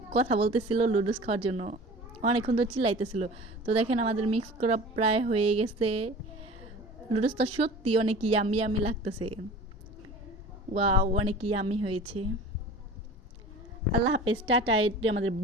কথা বলতেছিল লুডুস খাওয়ার জন্য, অনেকক্ষণ তো চিল্লাইতেছিল। তো দেখেন আমাদের মিক্স করা প্রায় হয়ে গেছে। লুডুসটা সত্যি অনেক ইয়ামি ইয়ামি লাগতেছে। ওয়াও, অনেক ইয়ামি হয়েছে। আল্লাহ হাফেজ, টাটা। এটা আমাদের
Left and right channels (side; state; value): both; normal; correlation 0.40